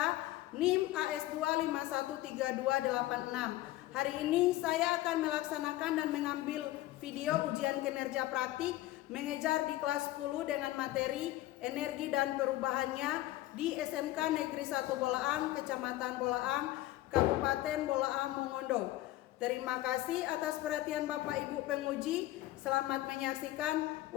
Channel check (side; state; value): right; quieter; 16.2 dB